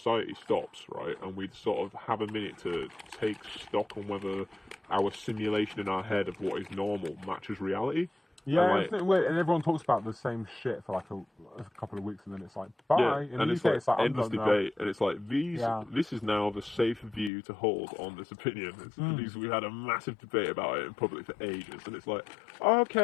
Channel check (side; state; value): right; drops out; at 17.3 s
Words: stops, right? And we sort of have a minute to take stock on whether our simulation in our head of what is normal matches reality. Yeah, And, isn't it weird? And everyone talks about the same shit for like a couple of weeks, and then it's like, bye. Yeah, In and the it's UK, like I'm endless done now. debate, and it's like Yeah. this is now the safe view to hold on this opinion. Because we had a massive debate about it in public for ages, and it's like,